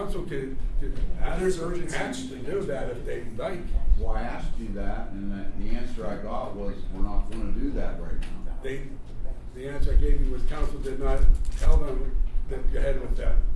could There's urgency. Hatch to do that if they like. well, I asked you that, and the answer I got was, we're not gonna do that right now. The answer I gave you was council did not tell them to go ahead with that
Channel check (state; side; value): identical; both; correlation 1.00